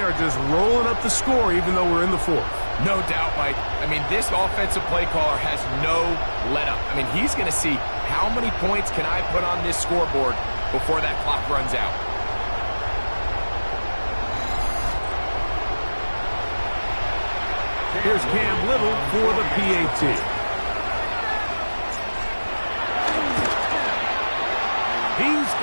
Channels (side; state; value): both; inverted; correlation -1.00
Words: are just rolling up the score even though we're in the fourth. No doubt, Mike. I mean, this offensive play caller has no let-up. I mean, he's going to see how many points can I put on this scoreboard before that clock runs out. Here's Cam Little for the PAT. He's